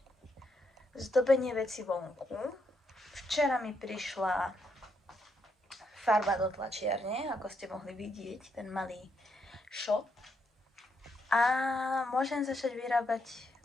zdobenie veci vonku. Včera mi prišla farba do tlačiarne, ako ste mohli vidieť, ten malý shop. A môžem začať vyrábať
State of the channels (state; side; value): normal; both; correlation 0.78